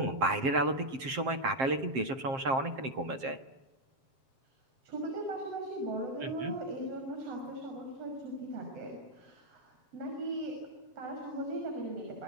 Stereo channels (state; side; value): late; left; 7.6 ms